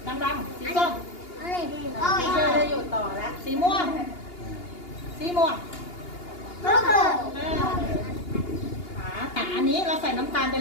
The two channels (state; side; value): late; right; 2.8 ms